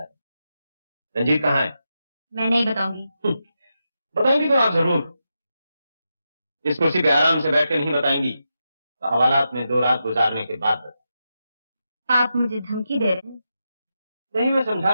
रंजीत कहाँ है? मैं नहीं बताऊंगी। बताएंगी तो आप जरूर। इस कुर्सी पे आराम से बैठ के नहीं बताएंगी तो हवालात में 2 रात गुजारने के बाद। आप मुझे धमकी दे रहे हैं? नहीं, मैं समझा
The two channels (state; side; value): inverted; both; correlation -0.87